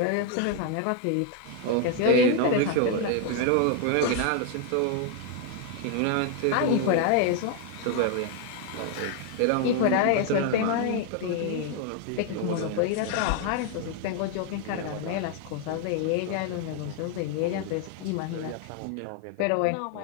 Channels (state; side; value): different; both; correlation 0.01